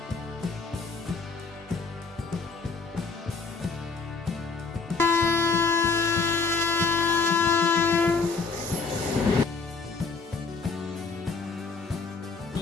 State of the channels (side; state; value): right; quieter; 4.5 dB